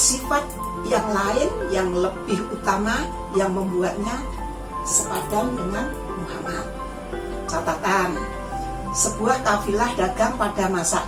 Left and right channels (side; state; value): both; identical; correlation 1.00